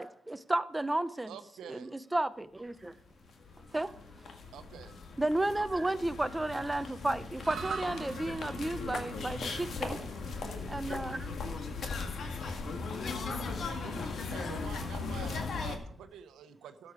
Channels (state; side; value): normal; both; correlation 0.89